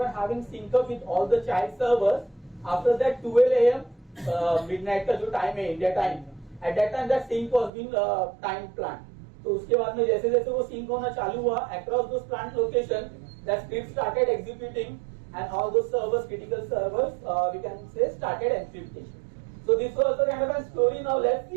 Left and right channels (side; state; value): left; drops out; at 7.7 s